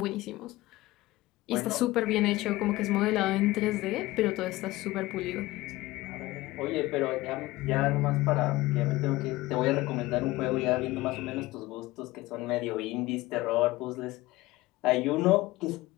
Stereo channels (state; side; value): quieter; right; 18.8 dB